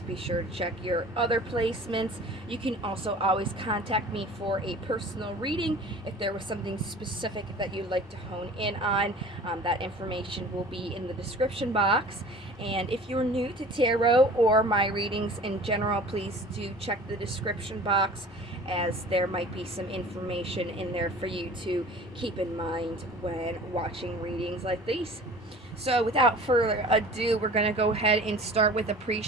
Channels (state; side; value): normal; both; correlation 0.43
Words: be sure to check your other placements. You can also always contact me for a personal reading if there was something specific that you'd like to hone in on. That information will be in the description box. And if you're new to tarot or my readings in general, please do check the description box, as there might be some information in there for you to keep in mind when watching readings like these. So without further ado, we're going to go ahead and start with a